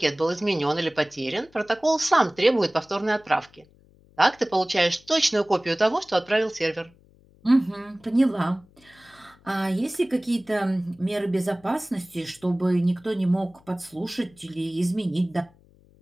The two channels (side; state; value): left; noise; hum, 29 dB below the sound